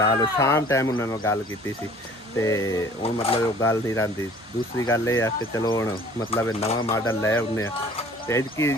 ਸ਼ਾਮ ਟਾਈਮ ਉਹਨਾਂ ਨਾਲ ਗੱਲ ਕੀਤੀ ਸੀ ਤੇ ਹੁਣ ਮਤਲਬ ਉਹ ਗੱਲ ਨਹੀਂ ਰਹਿੰਦੀ ਦੂਸਰੀ ਗੱਲ ਇਹ ਆ ਕਿ ਚਲੋ ਹੁਣ ਮਤਲਬ ਇਹ ਨਵਾਂ ਮਾਡਲ ਲੈ ਆਉਂਦੇ ਆ ਤੇ ਇਸਕੀ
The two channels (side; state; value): both; normal; correlation 0.51